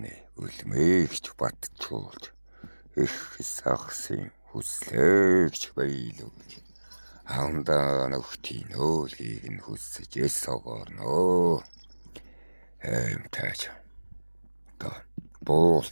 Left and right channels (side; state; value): both; inverted; correlation -1.00